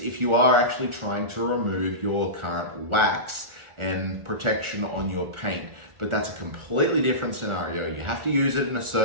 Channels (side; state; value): left; late; 1.4 ms